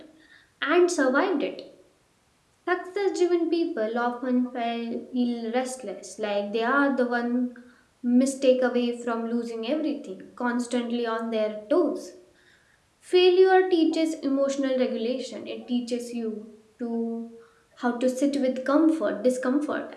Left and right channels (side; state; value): both; identical; correlation 1.00